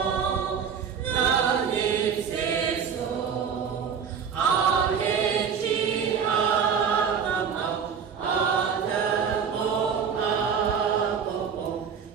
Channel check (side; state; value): left; quieter; 6.9 dB